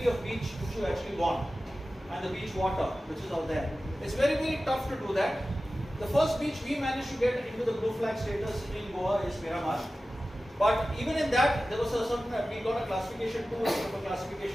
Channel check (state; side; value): normal; both; correlation 0.95